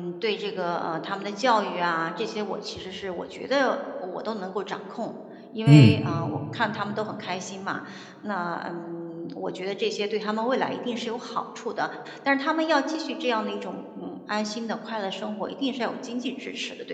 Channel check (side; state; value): both; identical; correlation 1.00